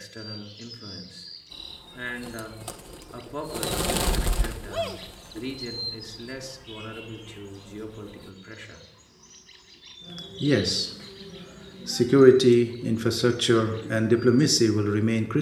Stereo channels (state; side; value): identical; both; correlation 1.00